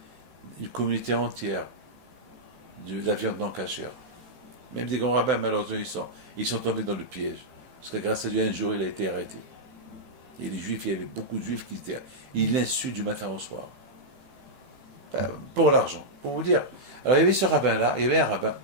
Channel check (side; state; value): left; late; 16 ms